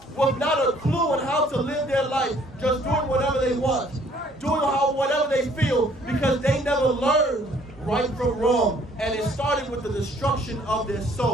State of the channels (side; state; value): both; normal; correlation 0.60